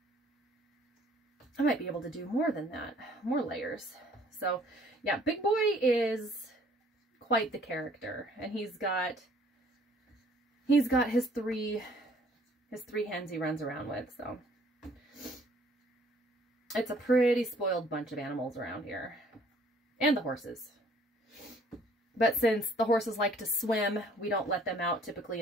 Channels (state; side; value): normal; both; correlation 0.59